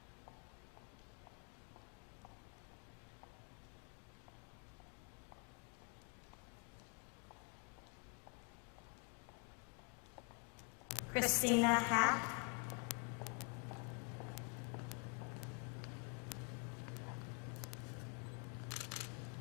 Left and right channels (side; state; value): right; quieter; 33.4 dB